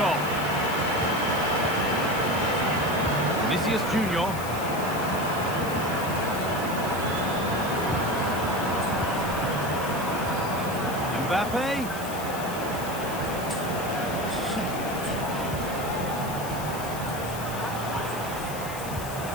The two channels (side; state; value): left; noise; hiss, 12 dB below the sound